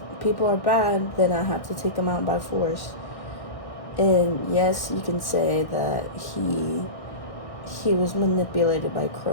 people are bad, then I have to take them out by force. And yes, you can say that he was manipulated by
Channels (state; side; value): late; right; 1.6 ms